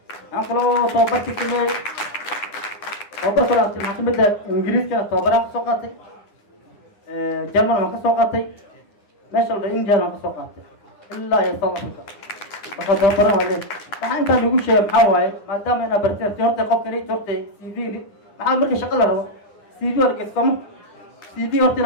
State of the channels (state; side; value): late; right; 9.8 ms